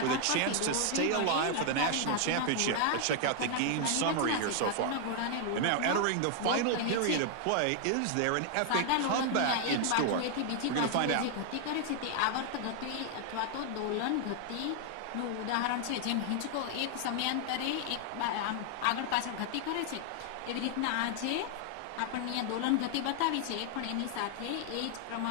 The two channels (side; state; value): both; different; correlation 0.00